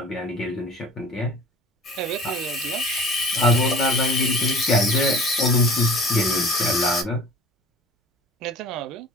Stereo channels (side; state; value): both; normal; correlation 0.43